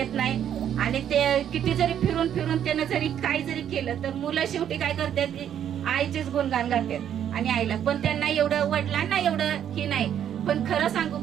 नाही. आणि ते किती जरी फिरून त्यानं जरी काही जरी केलं तर मुलं शेवटी काय करतात, आईचेच गुणगान गातात. आणि आईला पण त्यांना एवढं, वडिलांना एवढं ही नाही. पण खरं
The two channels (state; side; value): quieter; left; 9.7 dB